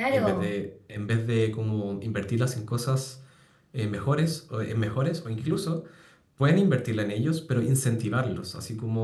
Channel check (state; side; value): identical; both; correlation 1.00